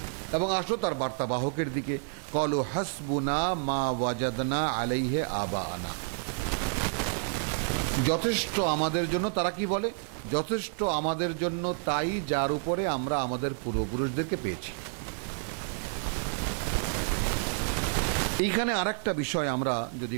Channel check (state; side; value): silent; left; 58 dB below the other